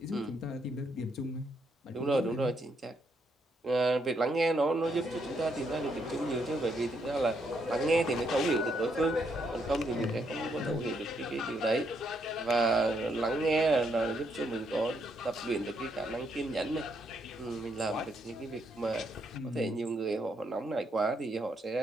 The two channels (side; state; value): both; normal; correlation 0.75